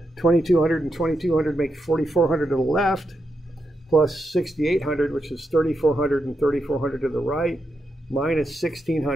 2200 and 2200 make 4400 to the left. plus 6,800, which is 3,400 and 3,400 to the right, minus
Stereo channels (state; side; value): normal; both; correlation 0.85